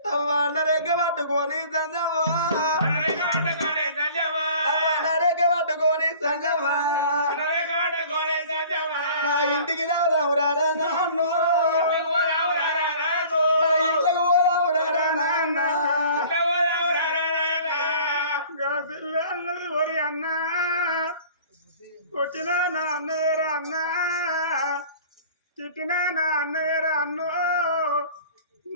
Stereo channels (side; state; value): both; inverted; correlation -0.47